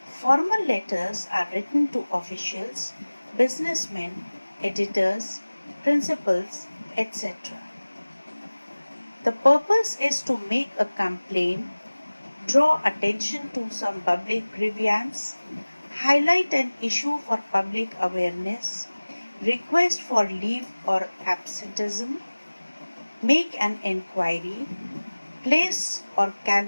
formal letters are written to officials, businessmen, editors, principals, etc. The purpose is to make a complaint, draw attention to some public grievance, highlight an issue for public awareness, request for leave or absenteeism, make an enquiry, place or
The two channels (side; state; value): both; inverted; correlation -1.00